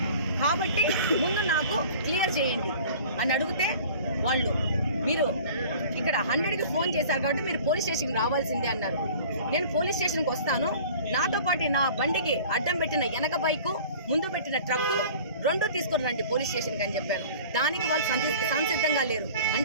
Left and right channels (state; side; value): inverted; both; correlation -0.45